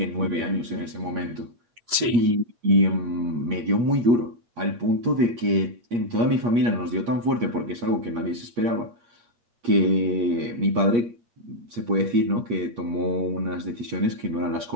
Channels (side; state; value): left; late; 8.5 ms